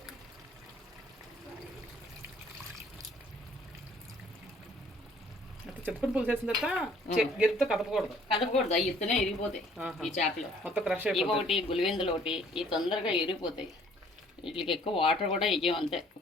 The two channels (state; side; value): normal; both; correlation 0.58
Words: చింతపండు పులుసు వేసిన తర్వాత గిరితో కదపకూడదు అవి ఇత్తనే ఇరిగిపోతాయి ఈ చేపలు. మొత్తం క్రష్ ఒకటి గులివెందులు ఒకటి ఈ తొందరగా ఇరిగిపోతాయి. వీటికి ఎక్కువ వాటర్ కూడా వేయం, అంతే